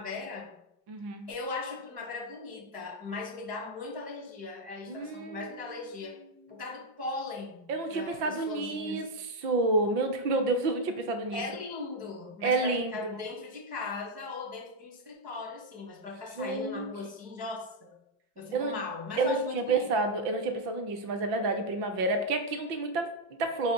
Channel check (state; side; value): late; left; 5.8 ms